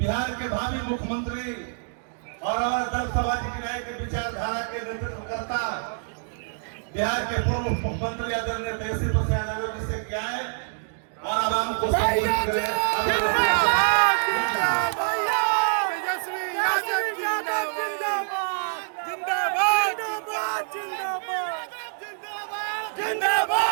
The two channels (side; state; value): left; silent; digital silence